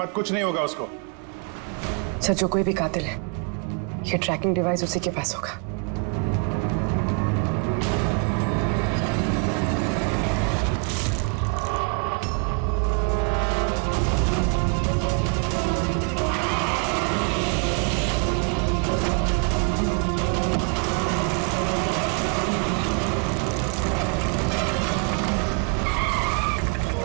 कुछ नहीं होगा उसको। सर, जो कोई भी कातिल है, ये ट्रैकिंग डिवाइस उसी के पास होगा।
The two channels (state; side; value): quieter; left; 34.7 dB